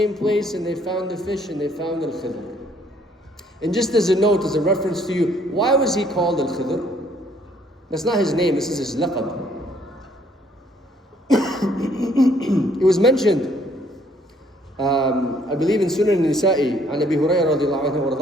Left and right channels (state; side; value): normal; both; correlation 0.64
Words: place and they found the fish and they found Al-Khidr. And just as a note, as a reference to you, why was he called Al-Khidr? That's not his name, this is his laqab. It was mentioned, I believe in Sunan Nisa'i, عن أبي هريرة رضي الله عنه